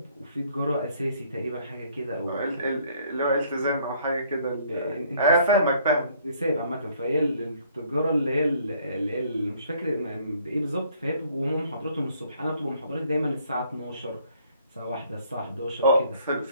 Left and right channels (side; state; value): both; inverted; correlation -0.63